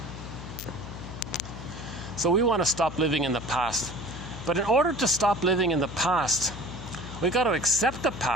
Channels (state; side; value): noise; left; hum, 11 dB below the sound